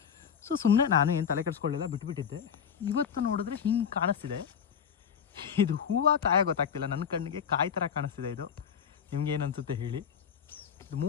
ಸೊ ಸುಮ್ಮನೆ ನಾನು ಏನು ತಲೆ ಕೆಡಿಸ್ಕೊಳ್ಳಿಲ್ಲ, ಬಿಟ್ಬಿಟ್ಟಿದ್ದೆ. ಇವತ್ತು ನೋಡಿದ್ರೆ ಹಿಂಗೆ ಕಾಣಿಸ್ತಿದೆ. ಇದು ಹೂವು ಕಾಯ ಗೊತ್ತಾಗ್ತಿಲ್ಲ, ನನ್ನ ಕಣ್ಣಿಗೆ ಕಾಯಿ ಥರ ಕಾಣಿಸ್ತಿದೆ. ಇದು ನಿಮ್ಗೇನು ಅನಿಸುತ್ತೆ ಹೇಳಿ. ಇದು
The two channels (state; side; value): quieter; right; 7.5 dB